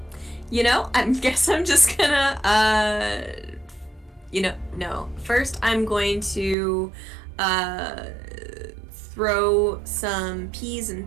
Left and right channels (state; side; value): drops out; left; at 6.6 s